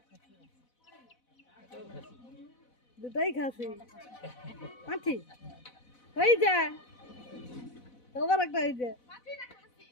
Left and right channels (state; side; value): late; right; 4.0 ms